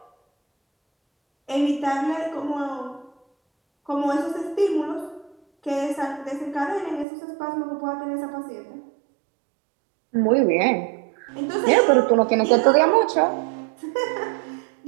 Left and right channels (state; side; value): drops out; left; at 7.1 s